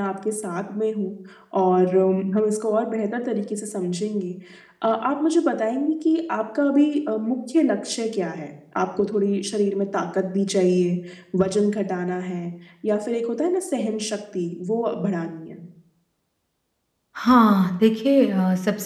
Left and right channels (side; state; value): both; identical; correlation 1.00